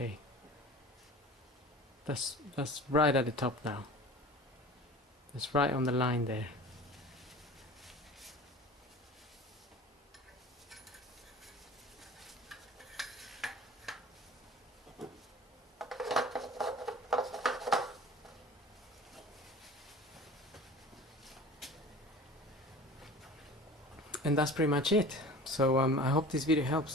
that's right at the top now. That's right on the line there. And that's pretty much it. So I hope this video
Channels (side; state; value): both; normal; correlation 0.40